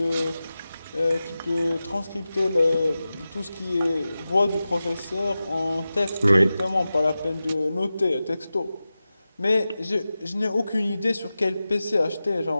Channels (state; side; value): inverted; both; correlation -0.94